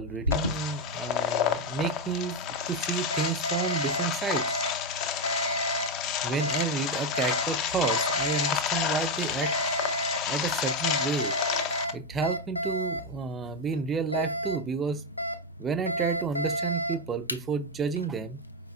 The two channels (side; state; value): both; normal; correlation 0.07